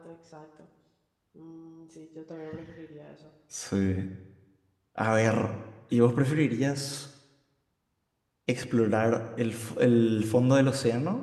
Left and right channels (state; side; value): identical; both; correlation 1.00